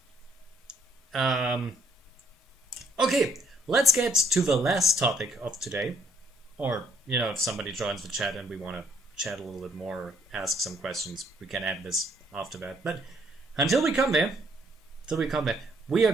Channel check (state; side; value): normal; both; correlation 0.68